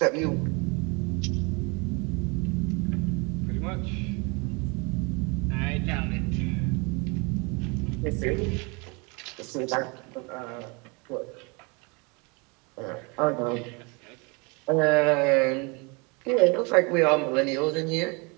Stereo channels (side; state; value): left; quieter; 30.1 dB